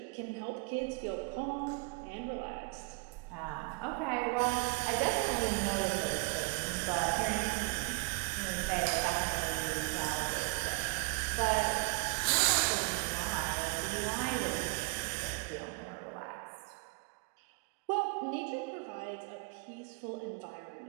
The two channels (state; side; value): quieter; left; 31.3 dB